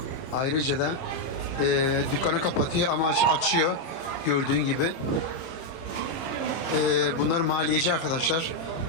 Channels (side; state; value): right; late; 30 ms